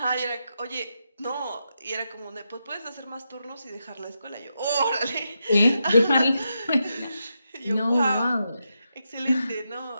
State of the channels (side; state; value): both; inverted; correlation -0.85